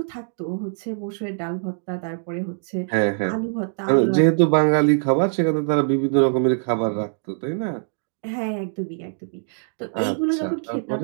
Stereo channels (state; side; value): silent; left; digital silence